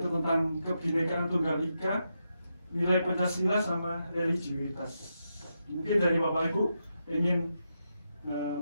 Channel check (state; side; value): inverted; both; correlation -0.85